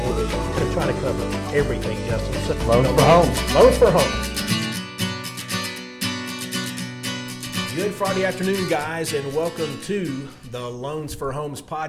mortgage. We're going to try to cover everything, Justin. So, Loans for home. Loans for home. Good Friday afternoon, guys, and welcome to the Loans for Homes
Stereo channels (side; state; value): both; identical; correlation 1.00